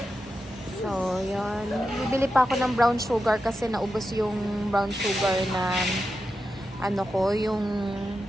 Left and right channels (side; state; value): both; normal; correlation 0.89